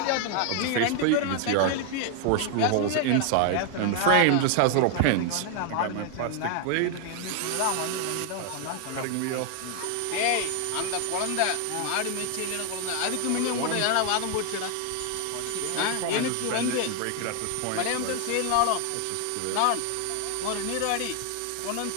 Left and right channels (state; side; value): different; both; correlation 0.00